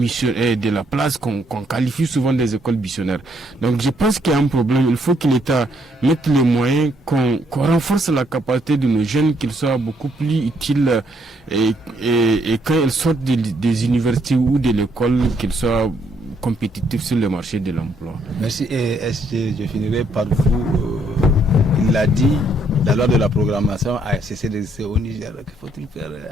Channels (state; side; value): normal; both; correlation 0.71